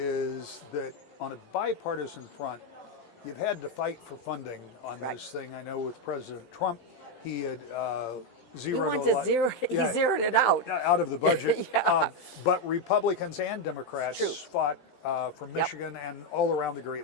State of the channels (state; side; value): late; right; 17 ms